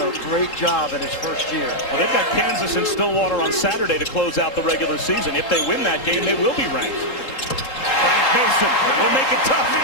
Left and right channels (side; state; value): right; late; 3.7 ms